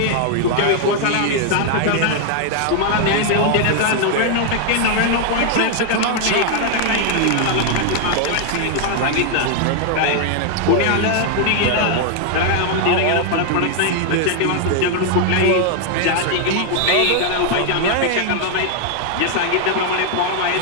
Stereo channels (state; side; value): different; both; correlation 0.00